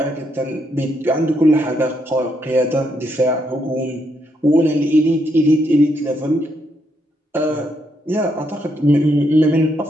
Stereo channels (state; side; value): normal; both; correlation 0.77